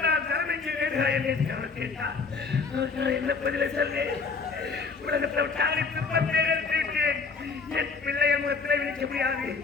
தரம் எங்கே வேண்டாம் என்று அவர் கேட்டார். நான் என்ன பதிலை சொல்வேன்? உலகத்தில் தாளித்து பந்தேன். என் பிள்ளைய முகத்தில் விழிக்க முடியாது,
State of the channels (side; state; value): right; quieter; 4.8 dB